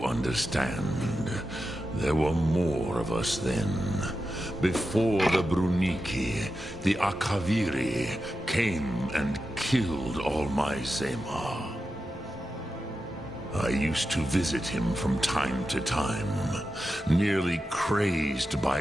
understand. There were more of us then. Before the Bruniki, the Akaviri came and killed all my Zema. I used to visit him from time to time, nearly crazed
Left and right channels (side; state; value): both; normal; correlation 0.90